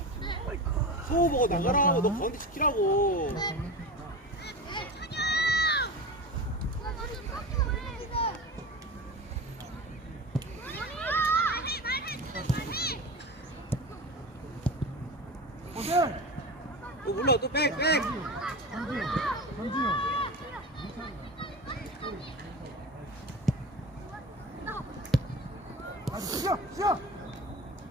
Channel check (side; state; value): both; normal; correlation 0.28